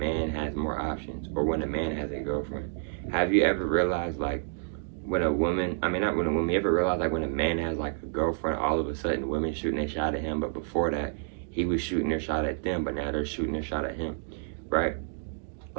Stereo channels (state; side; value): silent; left; digital silence